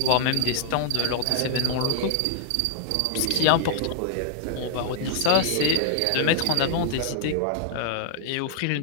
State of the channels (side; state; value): both; different; correlation 0.00